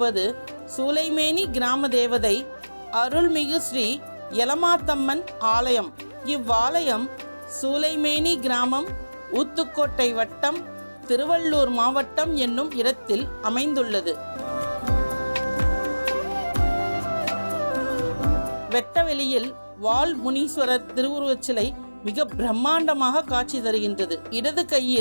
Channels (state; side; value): inverted; both; correlation -1.00